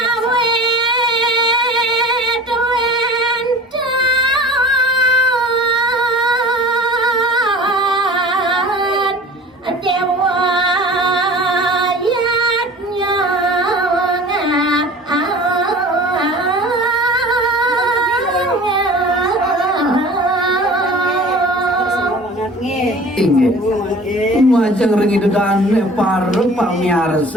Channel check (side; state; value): both; normal; correlation 0.42